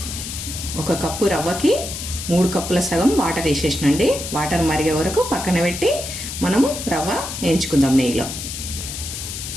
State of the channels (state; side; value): noise; left; hiss, 7 dB below the sound